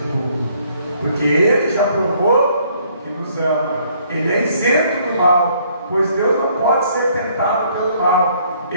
porque Ele já provou que nos ama. Ele é isento do mal, pois Deus não pode ser tentado pelo mal.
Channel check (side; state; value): both; inverted; correlation -0.64